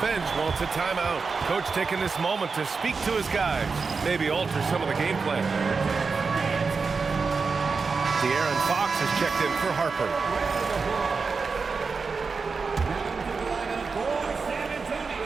wants a timeout. Coach taking this moment to speak to his guys, maybe alter some of the game plan. De'Aaron Fox has checked in for Harper.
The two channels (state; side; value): quieter; left; 4.8 dB